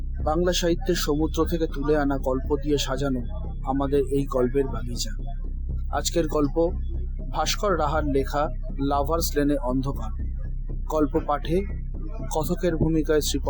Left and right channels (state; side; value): identical; both; correlation 1.00